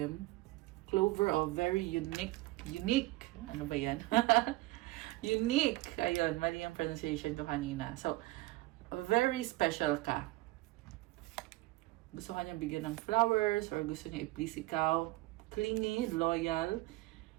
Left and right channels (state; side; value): quieter; left; 19.5 dB